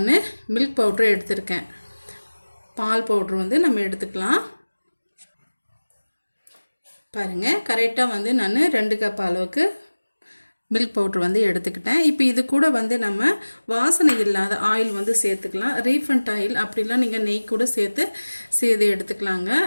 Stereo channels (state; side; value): inverted; both; correlation -1.00